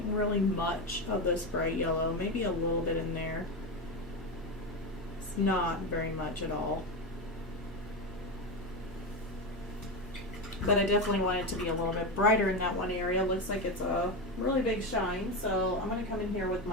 really much of this bright yellow, maybe a little bit in there. It's not very much at all. But I definitely want it to be a little bit brighter in that one area. Looks like it's a really big shine, so I'm going to come in here with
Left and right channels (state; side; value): normal; both; correlation 0.16